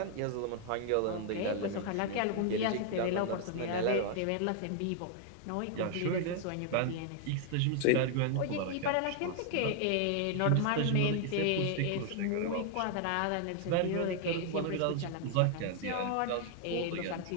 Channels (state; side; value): different; both; correlation 0.00